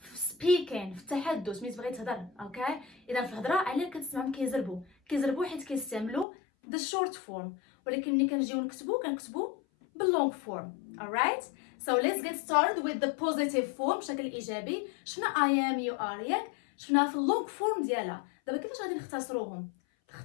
speaking، في التحدث، ملي تبغي تهضر. اوكي، اذا في الهضره علاه كتسمعهم كيزربوا حيت كيستعملوا the short form، ولكن ملي كنجيو كنكتبوا باللونج فورم. alright، so let's get started with the positive form بشكل ايجابي. شفنا I am you are ياك، شفناها في اللونج فورم ديالها. دابا كيفاش غادي نختصروهم؟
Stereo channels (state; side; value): drops out; right; at 6.2 s